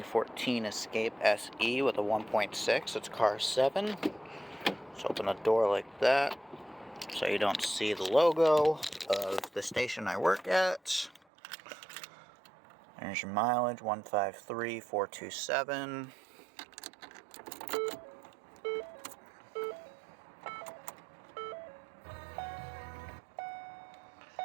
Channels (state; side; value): drops out; left; at 11.2 s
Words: Escape SE with a 1.6. It's car 7. Let's open the door like that so you don't see the logo of the station I work at. There's your mileage, 153,427.